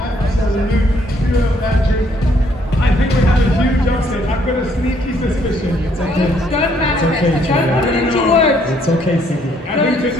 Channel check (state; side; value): normal; both; correlation 0.67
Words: pure magic. I think we have a huge upset. I've got a sneaky suspicion. It's okay. Don't manifest. Don't put it into words. It's okay, Cindy. I think